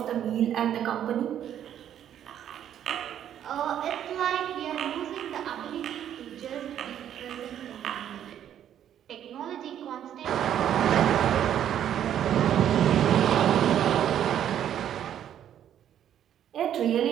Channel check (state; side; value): quieter; left; 10.3 dB